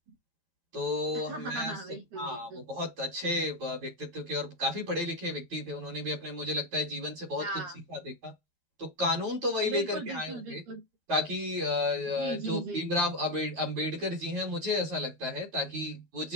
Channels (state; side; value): late; left; 13 ms